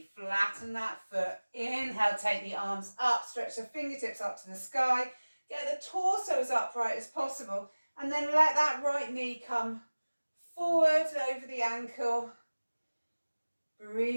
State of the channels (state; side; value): inverted; both; correlation -1.00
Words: flatten that foot. Inhale, take the arms up, stretch the fingertips up to the sky. Get the torso as upright as possible. And then let that right knee come forward over the ankle.